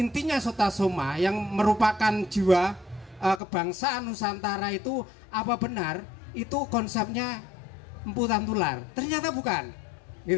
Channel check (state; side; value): drops out; right; at 3.4 s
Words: Sutasoma yang merupakan jiwa kebangsaan Nusantara itu, apa benar itu konsepnya Empu Tantular? Ternyata bukan